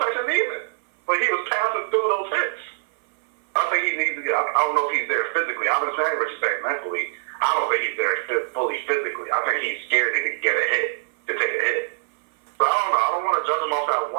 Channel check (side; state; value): left; silent; 58 dB below the other